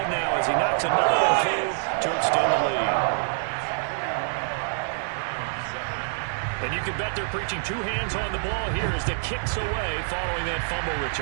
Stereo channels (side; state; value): left; silent; digital silence